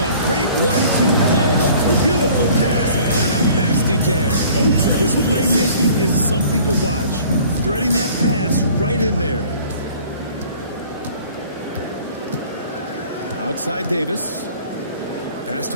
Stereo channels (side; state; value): both; inverted; correlation -0.51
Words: great 1-2 punch. A beautiful pass and a nasty jam. His playmaking is something to watch. Threading that pass right in there. Outside Davis. Pass